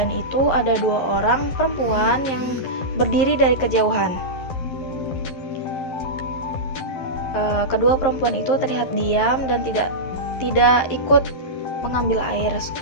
itu, ada 2 orang perempuan yang berdiri dari kejauhan. Kedua perempuan itu terlihat diam dan tidak ikut mengambil air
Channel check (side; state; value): right; late; 11 ms